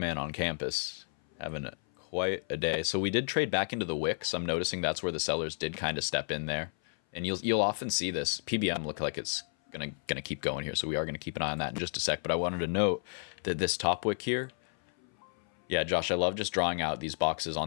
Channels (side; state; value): right; silent; 56 dB below the other